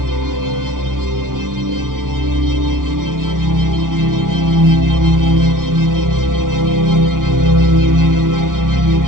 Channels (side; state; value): left; late; 0.90 ms